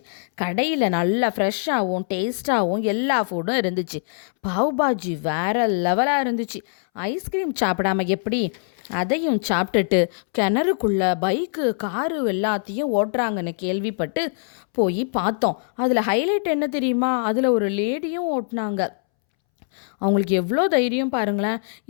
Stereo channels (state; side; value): silent; right; 64 dB below the other